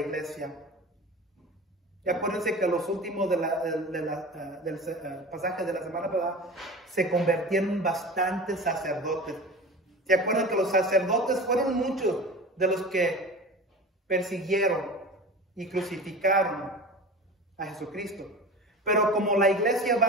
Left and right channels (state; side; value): normal; both; correlation 0.34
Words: Y acuérdense que los últimos del pasaje de la semana pasada se convirtieron en bastantes sacerdotes. ¿Se acuerdan que los sacerdotes fueron muchos de los que persiguieron y crucificaron a Jesucristo? Pero como la iglesia